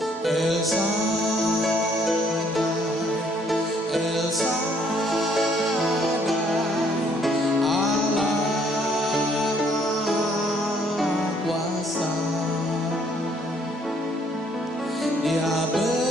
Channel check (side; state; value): both; normal; correlation 0.65